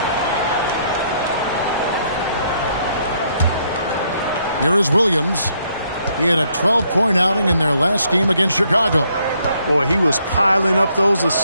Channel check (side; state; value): both; inverted; correlation -0.71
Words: Here is Williams. He had a 12-point outing in their last game against Chicago. Boy, he was piling up those